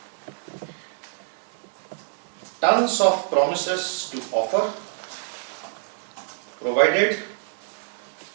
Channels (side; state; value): left; silent; digital silence